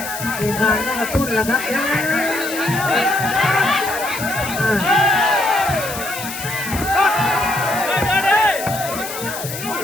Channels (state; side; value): noise; left; hiss, 9 dB below the sound